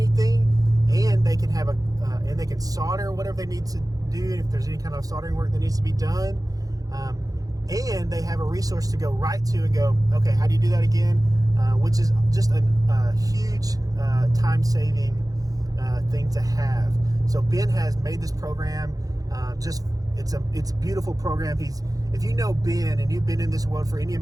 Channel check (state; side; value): late; left; 0.17 ms